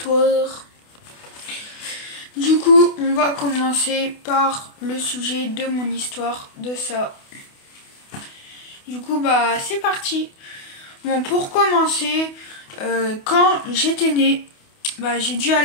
Du coup, on va commencer par le sujet de mon histoire, de ça. Du coup, bah, c'est parti. Bon, pour commencer, quand j'étais née, bah, j'ai dû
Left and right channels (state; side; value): late; right; 28 ms